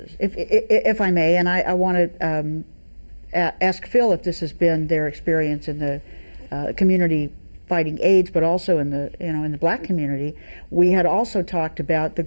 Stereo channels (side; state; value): both; inverted; correlation -1.00